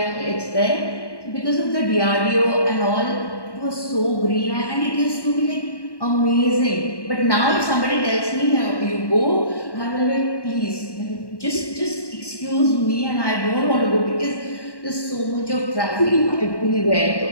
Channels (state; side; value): late; right; 1.1 ms